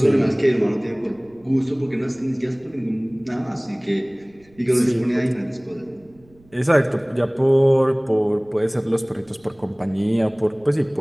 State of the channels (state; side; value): noise; right; rumble, 30 dB below the sound